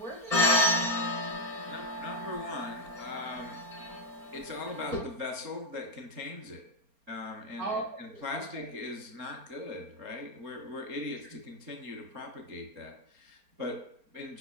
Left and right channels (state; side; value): late; left; 4.3 ms